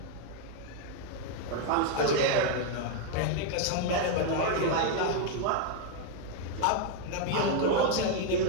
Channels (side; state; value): both; different; correlation 0.01